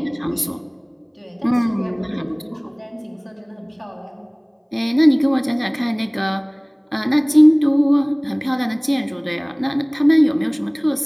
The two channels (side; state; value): both; identical; correlation 1.00